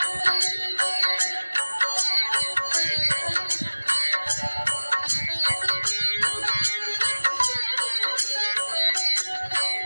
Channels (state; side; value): inverted; both; correlation -1.00